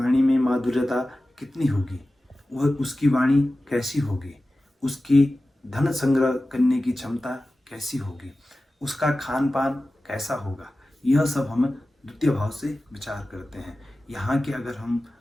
में माधुर्यता कितनी होगी, वह उसकी वाणी कैसी होगी, उसकी धन संग्रह करने की क्षमता कैसी होगी, उसका खान पान कैसा होगा। यह सब हम द्वितीय भाव से विचार करते हैं। यहाँ के अगर हम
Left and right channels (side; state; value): both; normal; correlation 0.95